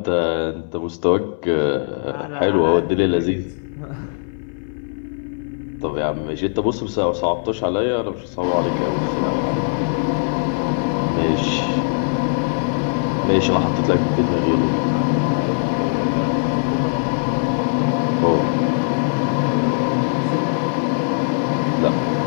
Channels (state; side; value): silent; right; digital silence